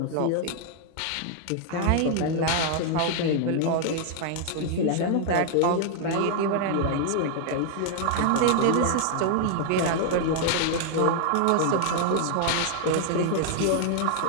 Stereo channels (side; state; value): both; different; correlation 0.00